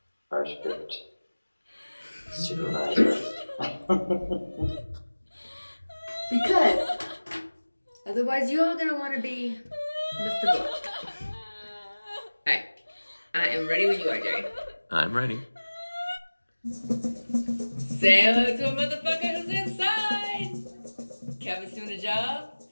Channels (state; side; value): inverted; both; correlation -1.00